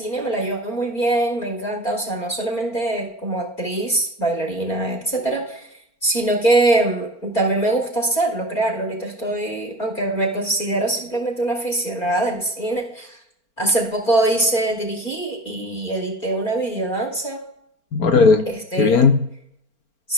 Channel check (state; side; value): late; right; 4.4 ms